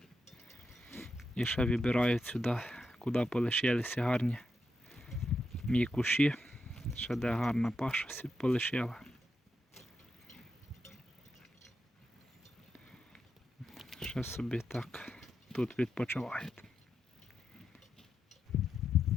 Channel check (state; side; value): normal; both; correlation 0.85